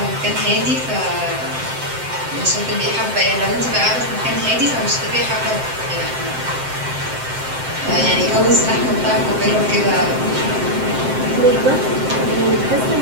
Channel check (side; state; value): left; late; 7.7 ms